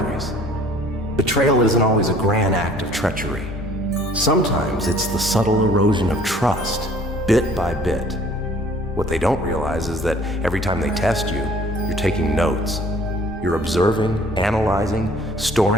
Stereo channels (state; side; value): normal; both; correlation 0.54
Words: Betrayal isn't always a grand act of treachery. Sometimes it's the subtle erosion of trust, bit by bit. What they don't realize is that every time they test you, you're taking notes. You're observing, analyzing,